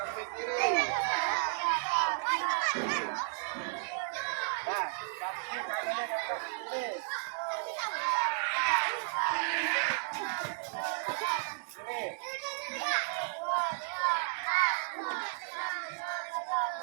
kiri. Nah, kaki kanannya kakak sini.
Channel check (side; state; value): left; silent; digital silence